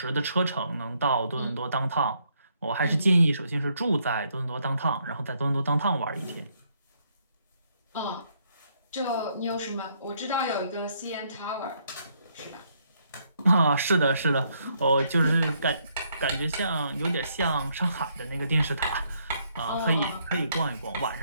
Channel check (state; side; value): inverted; both; correlation -0.72